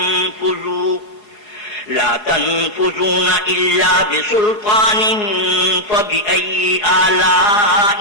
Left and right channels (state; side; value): late; right; 4.8 ms